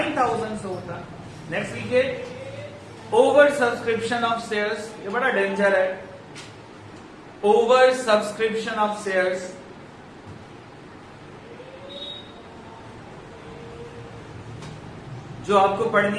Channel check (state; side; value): identical; both; correlation 1.00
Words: से होता। नेक्स्ट लिखिए ओवर सब्सक्रिप्शन ऑफ शेयर्स। ये बड़ा डेंजर है, ओवर सब्सक्रिप्शन ऑफ शेयर्स। जो आपको